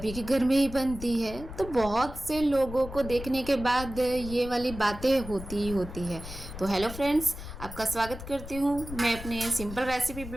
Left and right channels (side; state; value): left; noise; rumble, 11 dB below the sound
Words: के घर में ही बनती है। तो बहुत से लोगों को देखने के बाद ये वाली बातें होती ही होती है। तो हेलो फ्रेंड्स, आपका स्वागत करती हूँ मैं अपने सिंपल रेसिपी